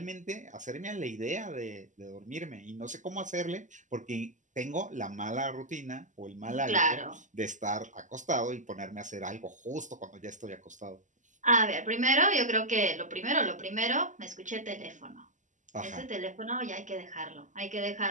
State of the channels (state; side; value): late; left; 0.36 ms